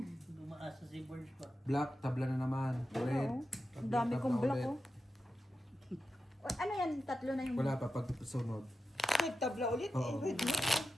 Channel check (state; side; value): normal; both; correlation 0.91